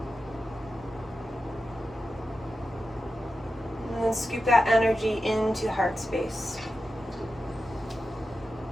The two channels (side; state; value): both; normal; correlation 0.91